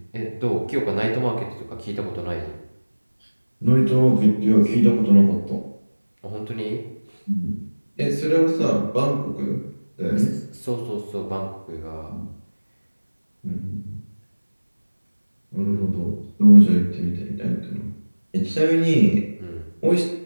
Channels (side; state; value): both; inverted; correlation -1.00